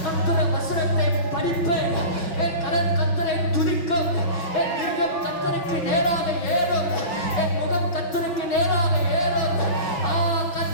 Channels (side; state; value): right; late; 5.6 ms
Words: கர்த்தருடைய வசனத்தை படிப்பேன், என் கரம் கர்த்தரை துதிக்கும், என் இருதயம் கர்த்தருக்கு நேராக ஏறும், என் முகம் கர்த்தருக்கு நேராக ஏறும்.